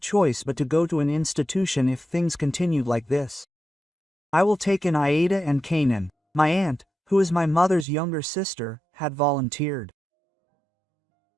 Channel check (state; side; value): drops out; left; at 7.9 s